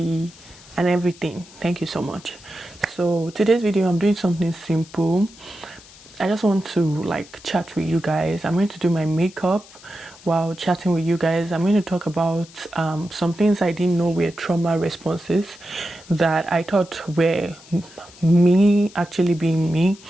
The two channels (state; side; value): noise; left; hiss, 22 dB below the sound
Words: and everything. Thank you so much. So today's video, I'm doing something simple. I just want to chat with you guys. I'm going to do my makeup while chatting with you guys. I'm going to talk about some things I didn't know were trauma responses that I thought were me actually being me.